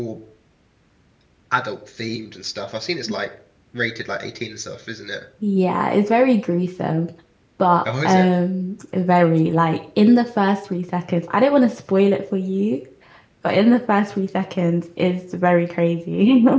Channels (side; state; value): both; identical; correlation 1.00